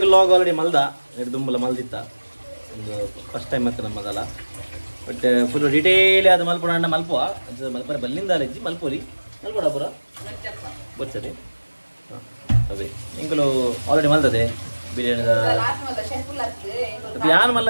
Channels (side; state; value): both; inverted; correlation -1.00